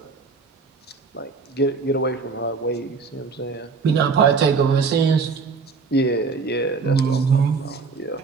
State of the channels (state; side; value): quieter; left; 4.8 dB